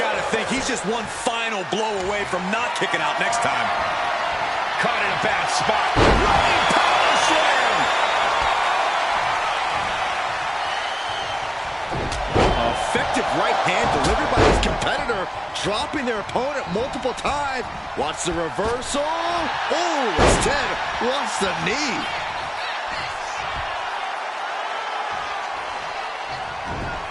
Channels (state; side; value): identical; both; correlation 1.00